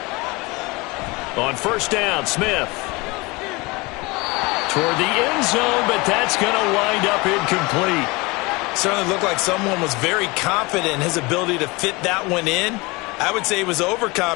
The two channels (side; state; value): right; quieter; 24.9 dB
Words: On first down, Smith. Toward the end zone, but that's going to wind up incomplete. Certainly looked like someone was very confident in his ability to fit that one in. I would say he was